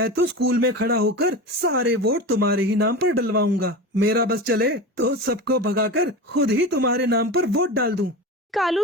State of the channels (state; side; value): normal; both; correlation 0.28